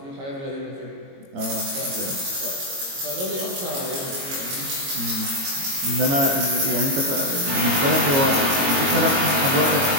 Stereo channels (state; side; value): late; left; 22 ms